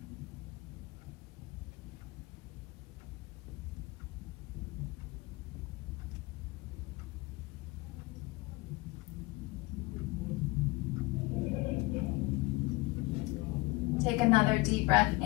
Take another deep breath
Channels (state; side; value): quieter; right; 22.3 dB